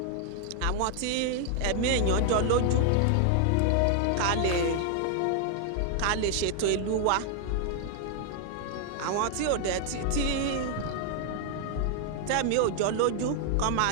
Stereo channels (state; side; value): different; both; correlation 0.00